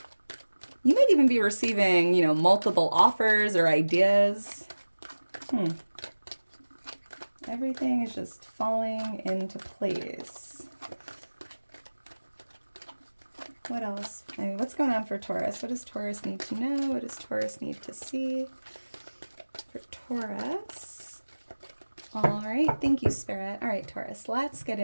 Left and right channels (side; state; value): both; inverted; correlation -1.00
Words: You might even be receiving, multiple offers or ideas. Everything is just falling into place. What else? I mean, what's going on for Taurus? What does Taurus need to know? What does Taurus need to see for Taurus? All right. Thank you, Spirit. All right, Taurus. Let's get